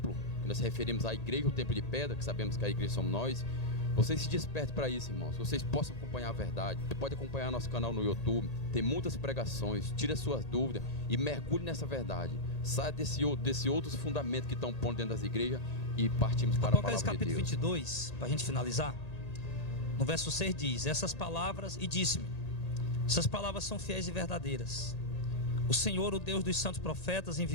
que nós referimos à igreja, o templo de pedra, que sabemos que a igreja somos nós. Vocês se despertem para isso, irmãos. Vocês possam acompanhar a verdade. Você pode acompanhar nosso canal no YouTube. Tem muitas pregações. Tire as suas dúvidas e mergulhe nessa verdade. Saia desse outros fundamentos que estão pondo dentro das igrejas e partimos para a palavra de Deus. Apocalipse capítulo 22, para a gente finalizar. No verso 6 diz: essas palavras, e disse-me, essas palavras são fiéis e verdadeiras. O Senhor, o Deus dos santos profetas,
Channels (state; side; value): late; right; 1.8 ms